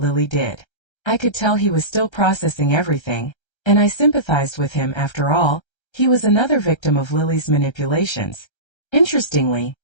did. I could tell he was still processing everything, and I sympathized with him. After all, he was another victim of Lily's manipulations. Interestingly,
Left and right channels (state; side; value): late; right; 1.3 ms